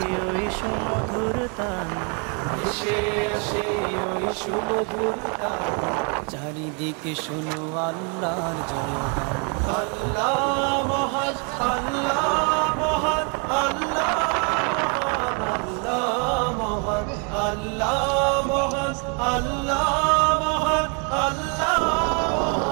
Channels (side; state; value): left; quieter; 36.9 dB